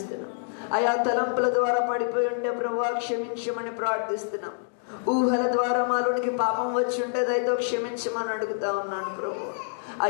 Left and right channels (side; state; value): right; silent; digital silence